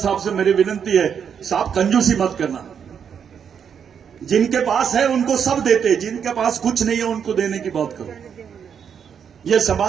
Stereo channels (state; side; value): quieter; left; 7.6 dB